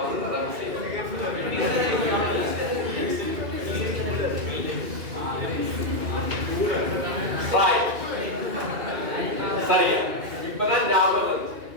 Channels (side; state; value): left; late; 2.5 ms